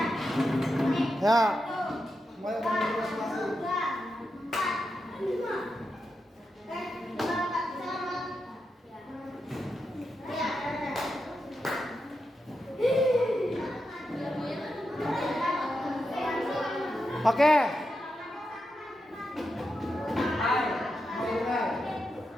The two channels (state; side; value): normal; both; correlation 0.87